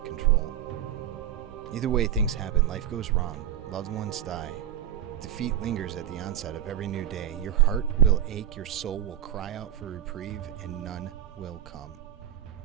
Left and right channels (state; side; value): quieter; left; 10.4 dB